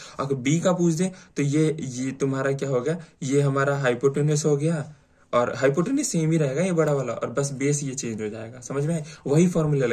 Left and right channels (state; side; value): identical; both; correlation 1.00